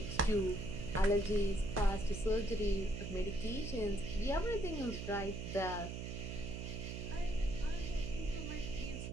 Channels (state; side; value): noise; right; hum, 6 dB below the sound